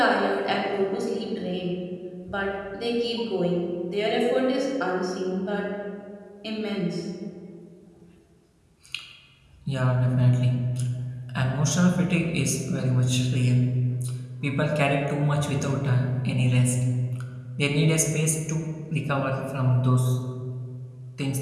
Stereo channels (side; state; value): both; identical; correlation 1.00